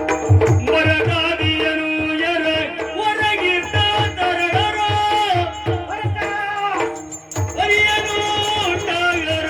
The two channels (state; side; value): identical; both; correlation 1.00